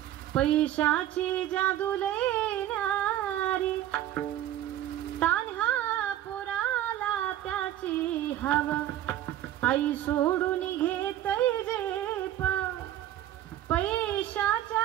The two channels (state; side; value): quieter; left; 12.6 dB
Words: पैशाची जादू लेणारी, तान्ह्या पोराला त्याची हवा, आई सोडून घेतै जे